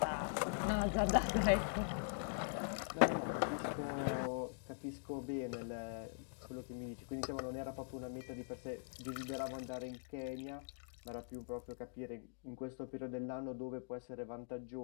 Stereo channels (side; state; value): right; silent; digital silence